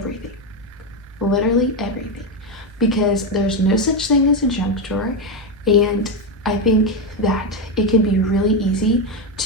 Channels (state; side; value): normal; both; correlation 0.09